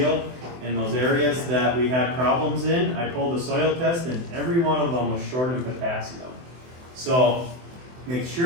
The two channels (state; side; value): late; left; 24 ms